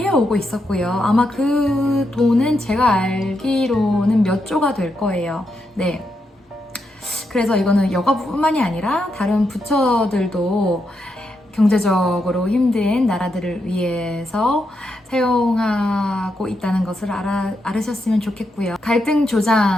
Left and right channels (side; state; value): both; normal; correlation 0.83